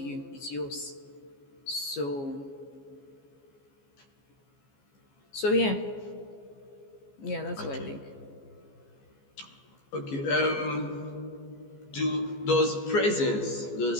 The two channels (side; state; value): right; late; 14 ms